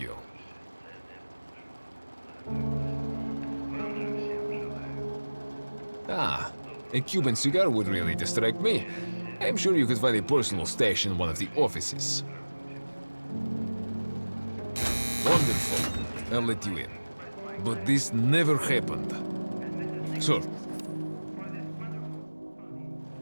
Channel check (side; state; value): both; inverted; correlation -1.00